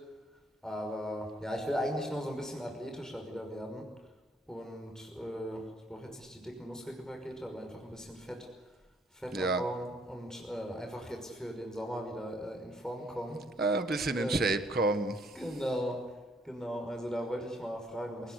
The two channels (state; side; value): normal; both; correlation 0.67